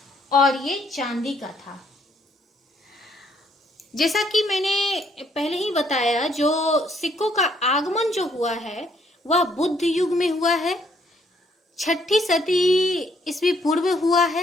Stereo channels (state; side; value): normal; both; correlation 0.68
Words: और ये चांदी का था। जैसा कि मैंने पहले ही बताया, जो सिक्कों का आगमन जो हुआ है वह बुद्ध युग में हुआ है, 6ठी सदी ईस्वी पूर्व हुआ